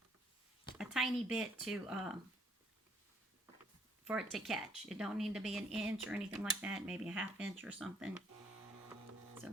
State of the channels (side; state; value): both; normal; correlation 0.65